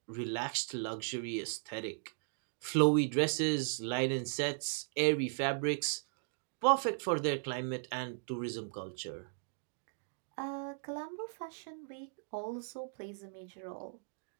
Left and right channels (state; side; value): silent; left; digital silence